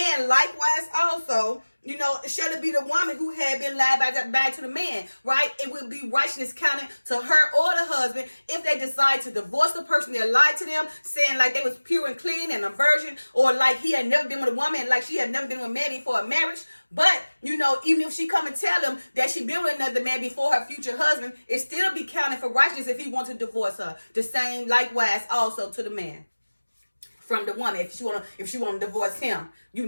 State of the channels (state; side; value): inverted; both; correlation -1.00